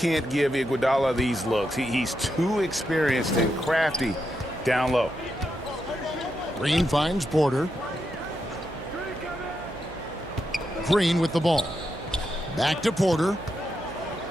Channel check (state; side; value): noise; right; hum, 15 dB below the sound